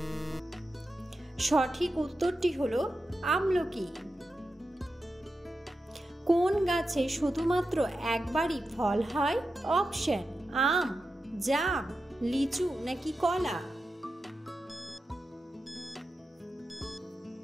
সঠিক উত্তরটি হলো আমলকি। কোন গাছে শুধুমাত্র একবারই ফল হয়? অপশন: আম, জাম, লিচু নাকি কলা?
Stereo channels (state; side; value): normal; both; correlation 0.90